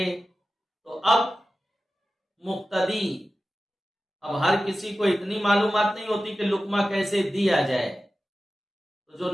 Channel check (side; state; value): both; normal; correlation 0.94